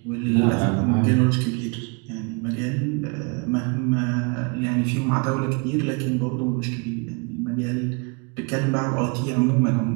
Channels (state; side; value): quieter; left; 32.1 dB